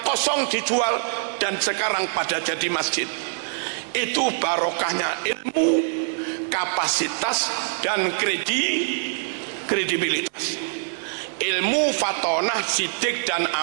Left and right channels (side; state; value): left; silent; 62 dB below the other